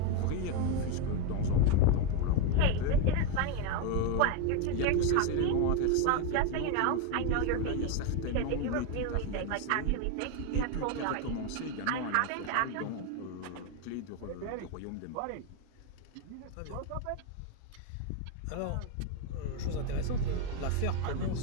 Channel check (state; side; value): different; both; correlation 0.02